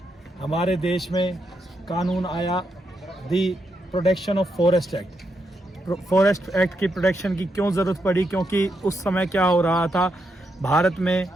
हमारे देश में कानून आया दी protection of forest act. Forest act की प्रोटेक्शन की क्यों ज़रूरत पड़ी? क्योंकि उस समय क्या हो रहा था, भारत में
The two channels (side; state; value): both; normal; correlation 0.82